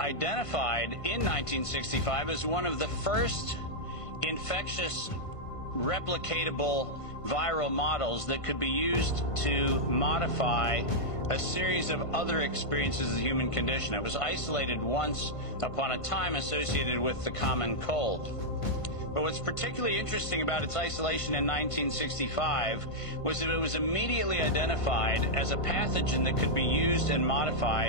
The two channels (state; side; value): late; right; 1.5 ms